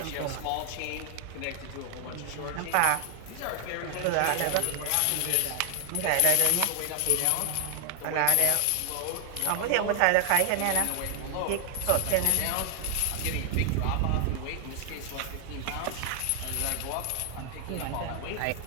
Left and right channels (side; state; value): both; different; correlation 0.00